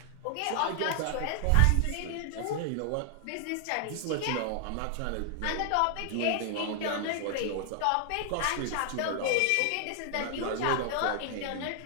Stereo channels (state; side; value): different; both; correlation 0.00